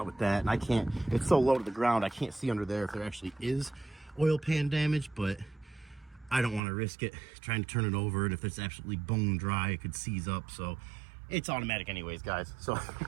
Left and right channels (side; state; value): left; drops out; at 6.6 s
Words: with that, and I can't, it's so low to the ground, I can't see under there if there actually is oil pan damage, but I don't want to risk it trying to turn it over, and if it's absolutely bone dry, it could seize up, so it's automatic anyways, guys. So